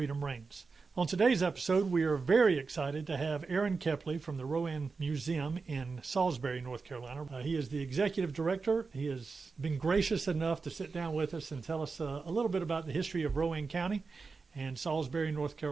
reigns. On today's episode, we are very excited to have Aaron Kepley from the Rowan Museum in Salisbury, North Carolina. He is the executive director. He has been gracious enough to sit down with us and tell us a little bit about the history of Rowan County and Salisbury, North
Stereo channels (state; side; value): quieter; left; 4.5 dB